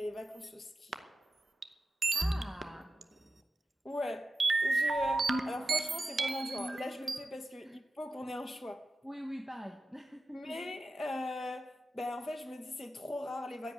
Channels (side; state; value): both; normal; correlation 0.92